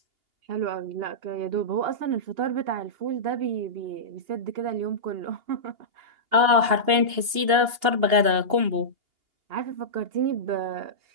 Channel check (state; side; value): late; left; 2.8 ms